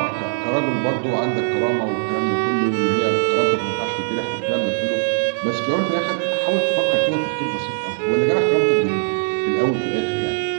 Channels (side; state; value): left; silent; digital silence